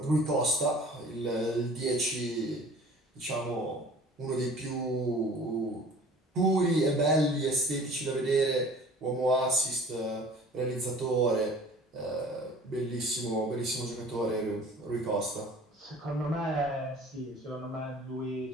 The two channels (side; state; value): both; normal; correlation 0.47